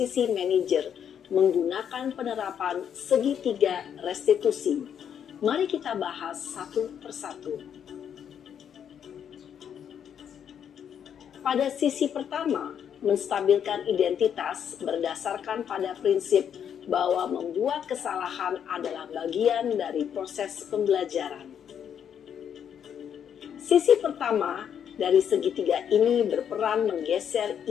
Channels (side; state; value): right; quieter; 8.5 dB